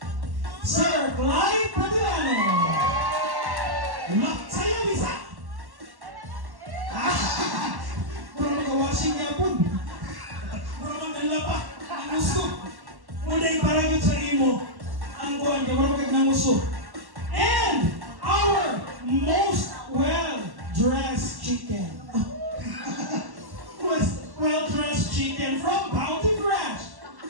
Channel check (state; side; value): late; left; 1.1 ms